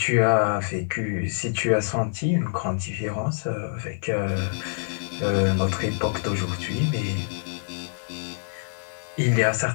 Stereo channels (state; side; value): silent; right; digital silence